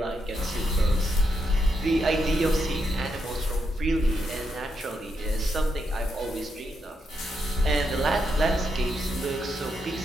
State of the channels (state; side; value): normal; both; correlation 0.81